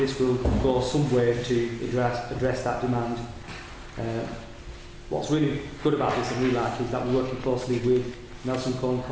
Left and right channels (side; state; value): both; identical; correlation 1.00